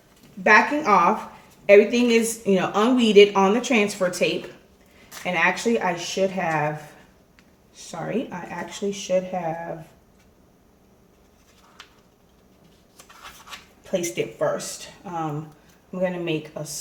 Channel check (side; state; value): both; identical; correlation 1.00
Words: backing off. Everything is, you know, unweeded on the transfer tape. And actually I should have, sorry, I actually should have placed it first. I'm going to make a